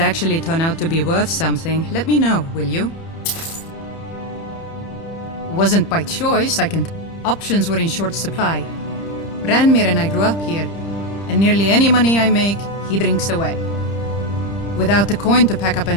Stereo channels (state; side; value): late; right; 30 ms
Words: turn out to be worth something, let me know, will you? Wasn't by choice, Options were in short supply. Branmir and I grew up here, and nearly any money I make, he drinks away. Without the coin to pack up